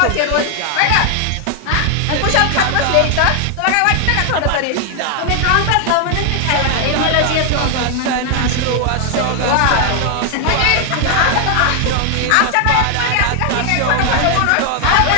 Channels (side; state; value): both; different; correlation 0.00